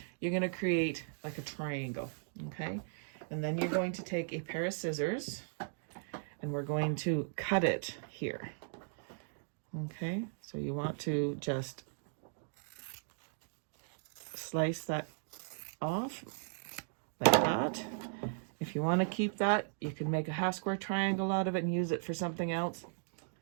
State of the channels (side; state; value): left; silent; digital silence